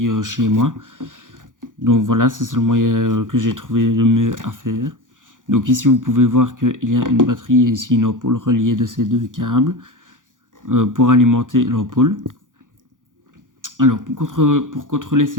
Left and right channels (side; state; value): left; late; 0.88 ms